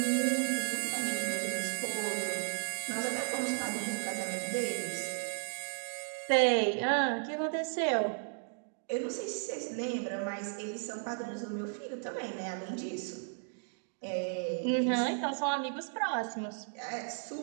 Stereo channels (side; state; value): left; silent; digital silence